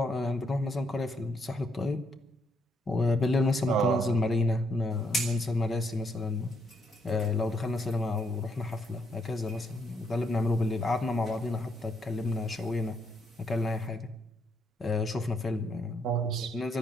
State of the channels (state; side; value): normal; both; correlation 0.74